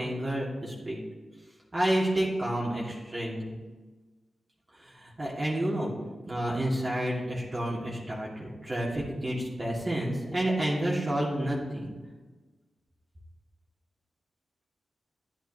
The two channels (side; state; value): both; normal; correlation 0.94